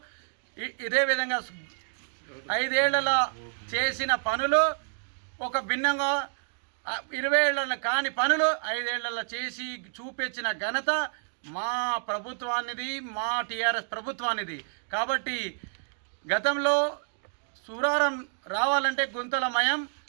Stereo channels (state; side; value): silent; left; digital silence